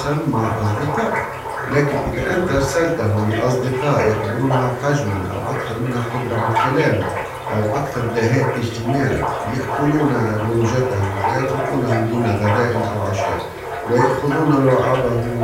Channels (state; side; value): identical; both; correlation 1.00